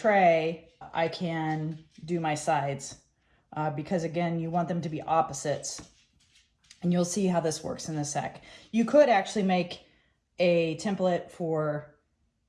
I can do my sides because again, you want them to be opposites. And you'll see how this works in a sec. You could actually make a template for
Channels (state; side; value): identical; both; correlation 1.00